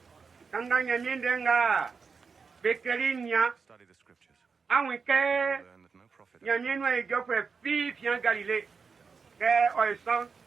kanga nyamiendenga, bekerinya, awike nyanyenu egofwe fi fian Galilée ke oison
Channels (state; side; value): quieter; left; 5.3 dB